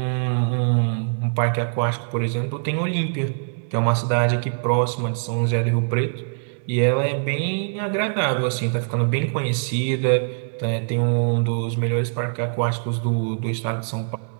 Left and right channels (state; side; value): silent; left; 63 dB below the other